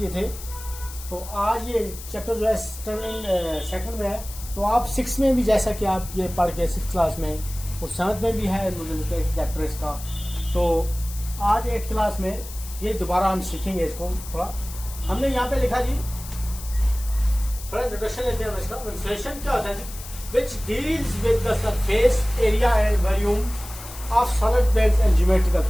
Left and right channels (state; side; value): noise; left; hiss, 14 dB below the sound